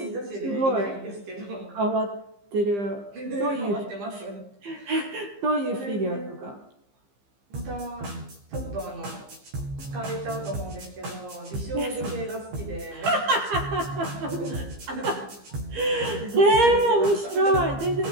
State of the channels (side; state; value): left; late; 15 ms